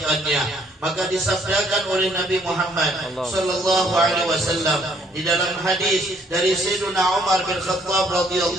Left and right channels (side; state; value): both; normal; correlation 0.64